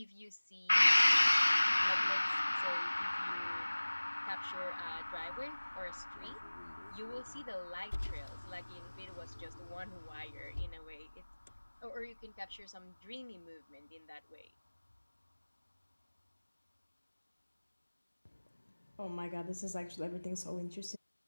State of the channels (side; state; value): both; inverted; correlation -1.00